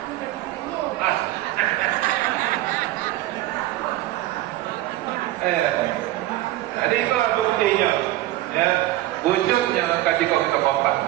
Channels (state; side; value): quieter; left; 15.8 dB